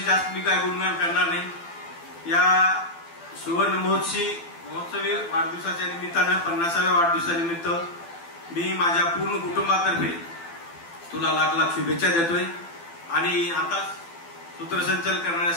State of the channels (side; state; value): right; late; 12 ms